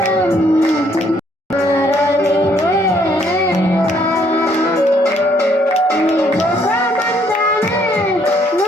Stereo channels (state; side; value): normal; both; correlation 0.67